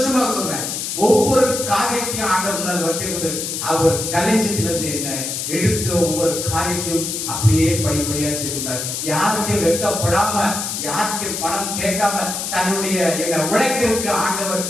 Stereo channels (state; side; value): noise; left; hiss, 4 dB below the sound